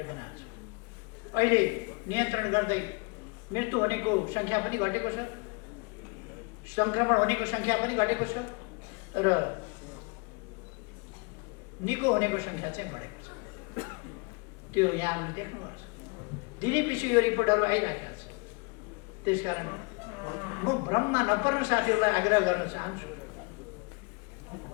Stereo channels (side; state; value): right; quieter; 31.1 dB